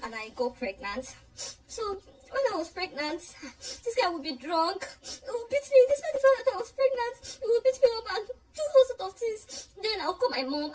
and I got pregnant. So when I was pregnant, this guy would be drunk. He would beat me. This man found out I was pregnant. He would beat me up and do all sorts of things. Then I'll call my mom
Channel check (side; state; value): both; identical; correlation 1.00